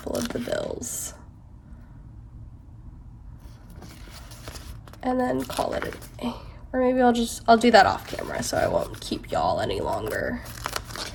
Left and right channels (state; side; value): identical; both; correlation 1.00